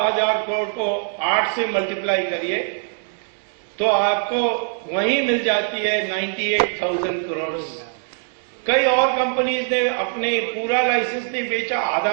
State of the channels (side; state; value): left; silent; 64 dB below the other